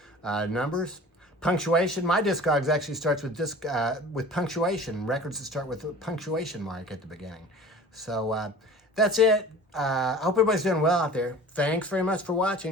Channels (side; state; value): both; normal; correlation 0.42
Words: numbers. Punctuation. My Discogs actually starts with punctuation. Records that start with a punctuation mark at the beginning. So that's it. I hope everybody's doing well out there. Thanks very much for